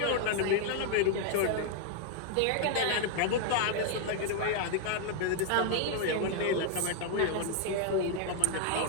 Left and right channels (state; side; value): different; both; correlation 0.00